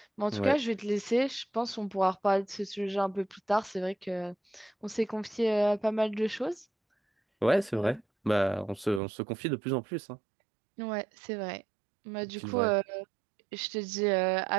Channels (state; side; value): drops out; left; at 9.0 s